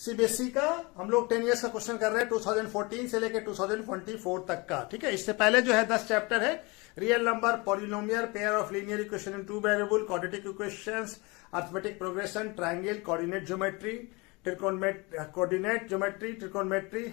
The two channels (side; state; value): right; quieter; 26.4 dB